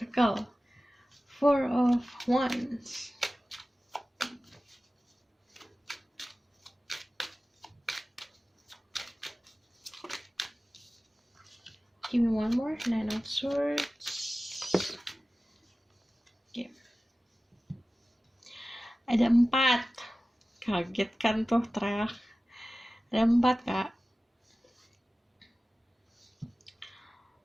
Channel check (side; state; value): both; normal; correlation 0.96